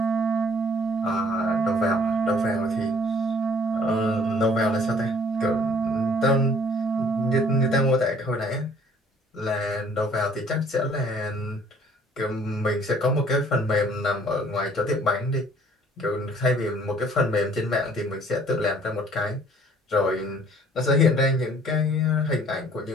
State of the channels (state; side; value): normal; both; correlation 0.57